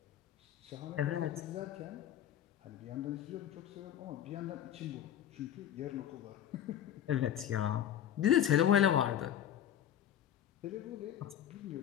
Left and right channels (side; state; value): right; quieter; 10.6 dB